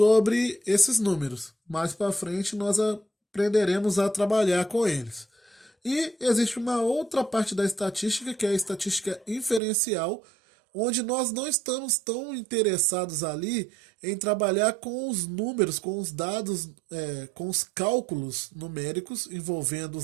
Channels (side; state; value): left; drops out; at 9.6 s